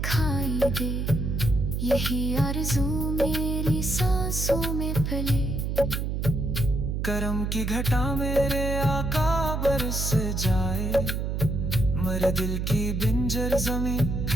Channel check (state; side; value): noise; right; hum, 1 dB below the sound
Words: दे, यही आरज़ू मेरी सांसों में पले। करम की घटा मेरे आका बरस जाए, मर दिल की बिंजर ज़मीं